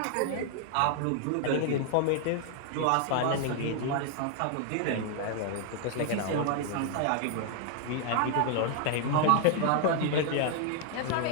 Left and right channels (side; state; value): both; different; correlation 0.00